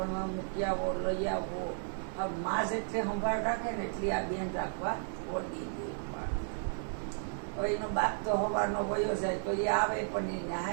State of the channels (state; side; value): silent; left; digital silence